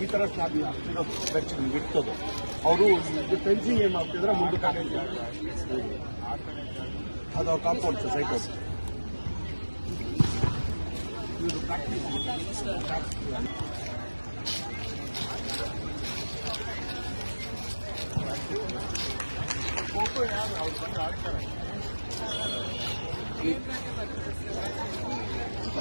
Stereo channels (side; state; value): both; inverted; correlation -1.00